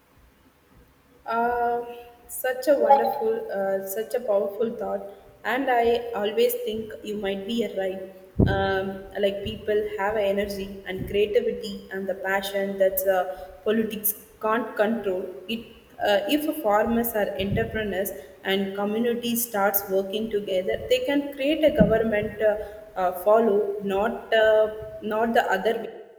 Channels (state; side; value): identical; both; correlation 1.00